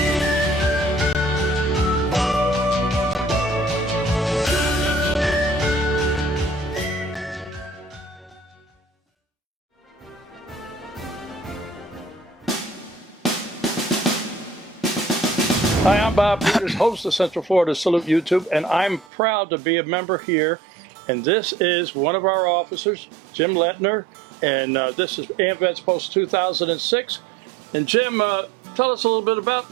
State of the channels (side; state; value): left; drops out; at 19.1 s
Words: Hi, I'm Bob Peters, host of Central Florida Salute YouTube, and I'm proud to be a member here. And this is one of our officers, Jim Lettner, and this is AMVETS Post 2006. And Jim, tell us a little bit about